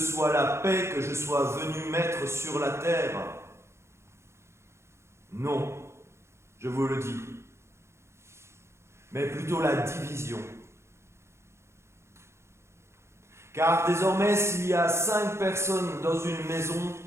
la paix que je sois venu mettre sur la terre? Non. Je vous le dis, mais plutôt la division. Car désormais, s'il y a 5 personnes dans une maison,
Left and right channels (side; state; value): left; late; 0.13 ms